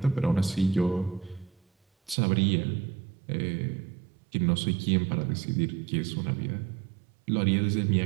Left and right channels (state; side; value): drops out; left; at 2.1 s